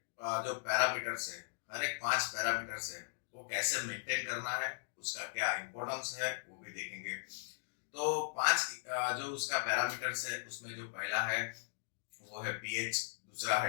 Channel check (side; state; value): right; silent; digital silence